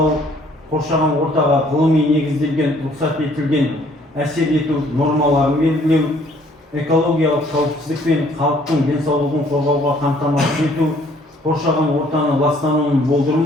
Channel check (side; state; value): both; normal; correlation 0.61